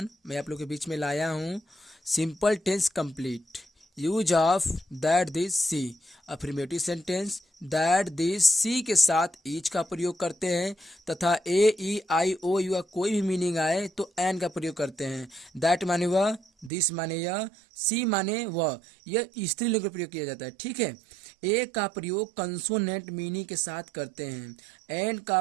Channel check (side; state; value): left; drops out; at 16.7 s